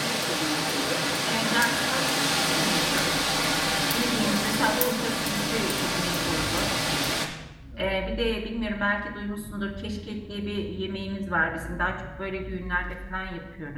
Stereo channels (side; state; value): both; identical; correlation 1.00